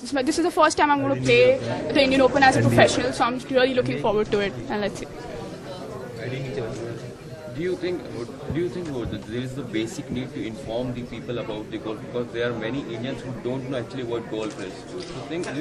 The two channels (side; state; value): both; identical; correlation 1.00